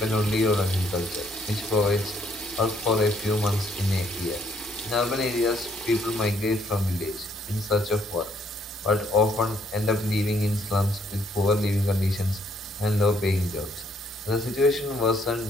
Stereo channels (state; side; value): normal; both; correlation 0.69